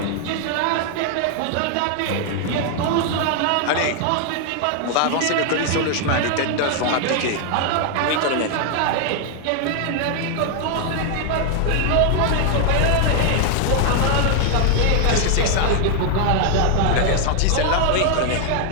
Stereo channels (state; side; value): different; both; correlation 0.00